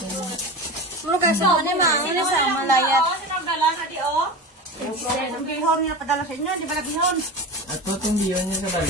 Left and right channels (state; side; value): normal; both; correlation 0.28